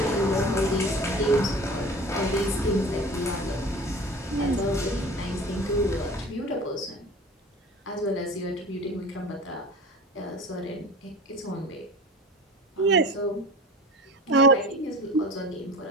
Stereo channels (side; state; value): both; normal; correlation 0.37